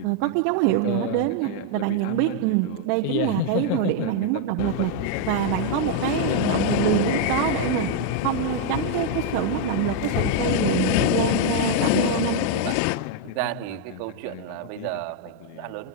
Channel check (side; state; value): both; different; correlation 0.00